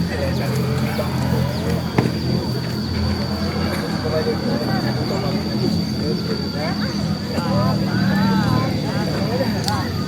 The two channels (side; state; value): both; identical; correlation 1.00